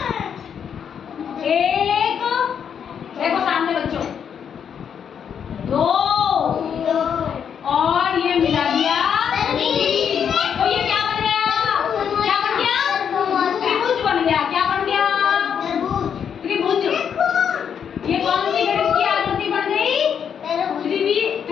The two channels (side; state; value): right; quieter; 7.8 dB